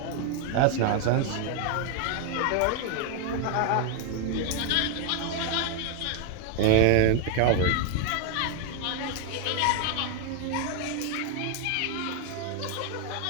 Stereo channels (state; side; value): different; both; correlation 0.00